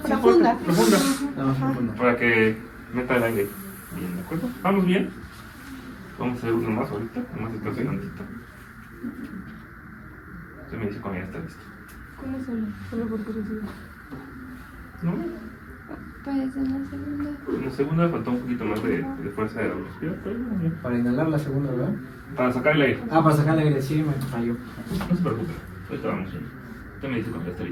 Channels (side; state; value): both; identical; correlation 1.00